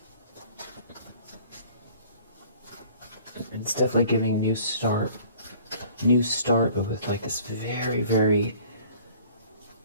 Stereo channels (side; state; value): both; inverted; correlation -0.51